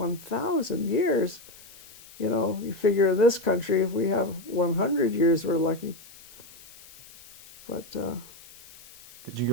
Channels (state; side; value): noise; left; hiss, 21 dB below the sound